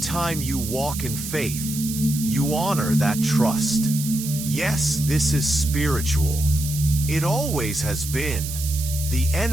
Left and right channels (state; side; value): noise; right; hiss, 8 dB below the sound